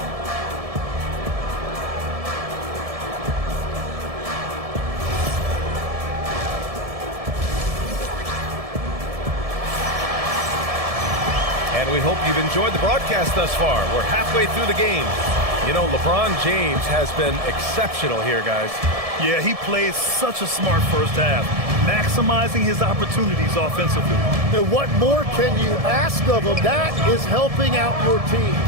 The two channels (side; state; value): left; late; 1.7 ms